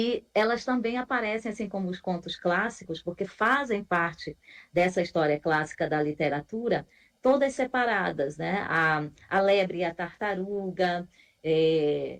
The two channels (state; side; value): identical; both; correlation 1.00